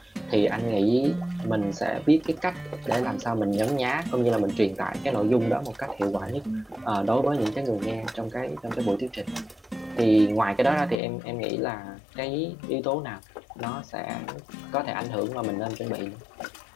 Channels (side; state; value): right; drops out; at 11.0 s